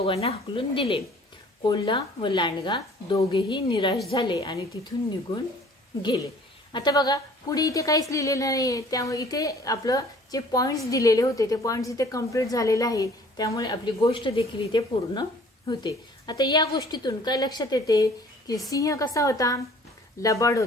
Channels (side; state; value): both; normal; correlation 0.53